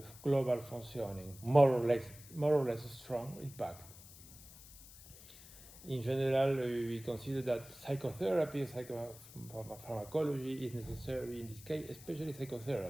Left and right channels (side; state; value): left; noise; hiss, 18 dB below the sound